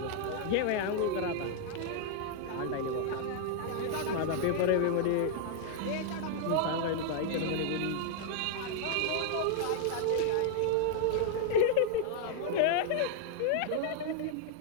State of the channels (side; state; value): both; different; correlation -0.01